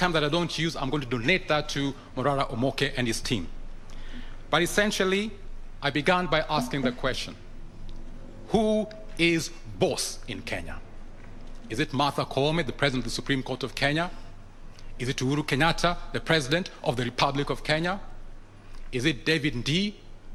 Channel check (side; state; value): both; identical; correlation 1.00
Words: that I don't use, I'm going to donate that to Morara Omoke and his team. But essentially, I began by asking the question, who is boss in Kenya? Is it Martha Koome, the President of the Supreme Court of Kenya? Is it Uhuru Kenyatta, the President of the Republic of Kenya? Is it David Ndii,